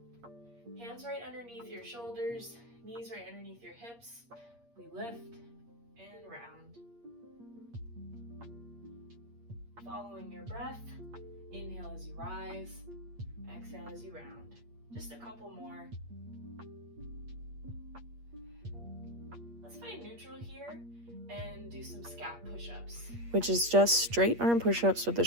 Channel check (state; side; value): late; left; 8.5 ms